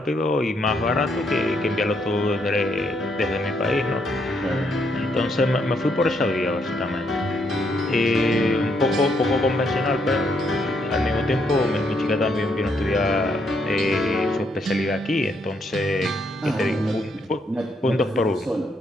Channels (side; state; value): both; normal; correlation 0.74